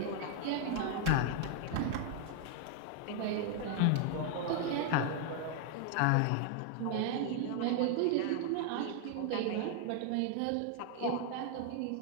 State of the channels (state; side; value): different; both; correlation 0.00